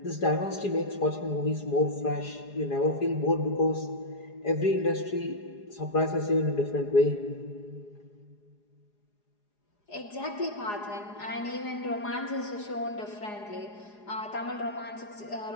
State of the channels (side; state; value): right; late; 4.9 ms